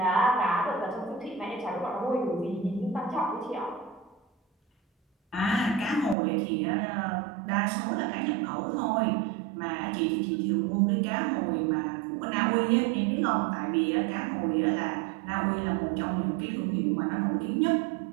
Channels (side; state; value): left; drops out; at 6.2 s